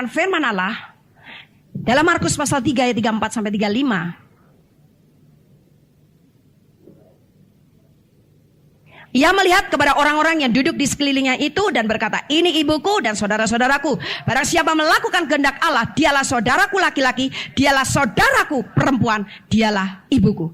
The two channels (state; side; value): identical; both; correlation 1.00